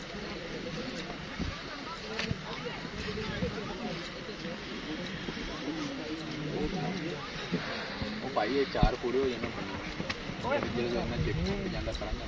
भाई ये चार पूरे हो जाने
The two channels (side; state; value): both; identical; correlation 1.00